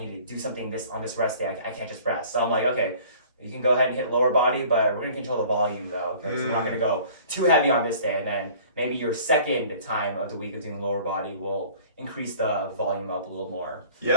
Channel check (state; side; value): inverted; both; correlation -0.49